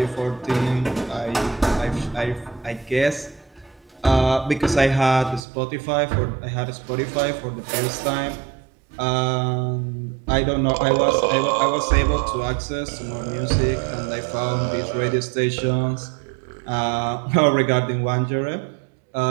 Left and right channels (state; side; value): drops out; left; at 5.4 s